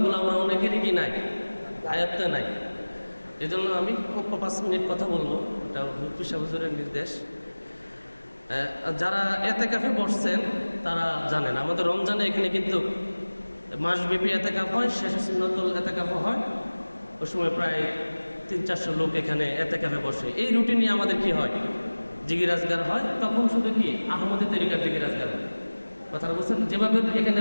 আমরা অনেকেরই কি নাই, আয়ত্তে নাই। এজন্য আমি 5 মিনিট কথা বলবো, এটা মুফতি সাহেব হুজুরের নির্দেশ। যারা এতেকাফে বসছেন তারা জানেন আমাদের রমজানে এখানে কিন্তু মাসব্যাপী এতেকাফ হয়, শেষে সুন্নতুল এতেকাফ হয়। ওই সময় প্রায় 300-400 লোক এখানে এতেকাফে বসে। এই রুটিনে আমাদের কি হয়, জিকির আজগার হয়। তখন শুধু কি আহমদি তরিকার জিকির আজগার হয়। কথাটা বলছেন, যেভাবে এখানে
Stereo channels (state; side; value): inverted; both; correlation -1.00